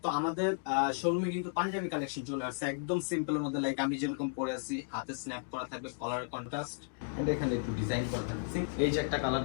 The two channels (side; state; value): right; silent; digital silence